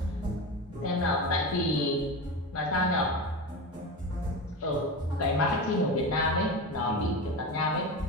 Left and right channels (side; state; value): both; normal; correlation 0.24